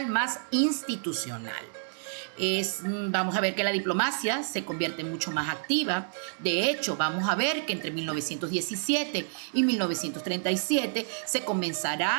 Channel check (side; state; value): left; silent; digital silence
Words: más institucional. Vamos a ver que la diplomacia se convierte mucho más activa. De hecho, vamos a ver que entre 1917 y 1937 se